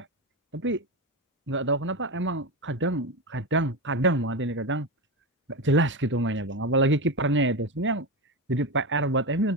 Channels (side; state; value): both; normal; correlation 0.16